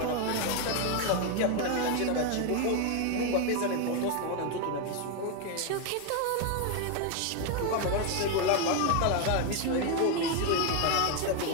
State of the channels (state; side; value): different; both; correlation 0.01